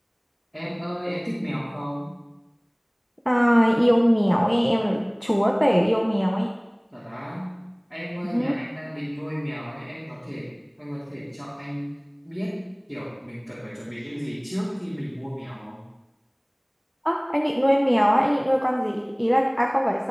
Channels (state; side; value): identical; both; correlation 1.00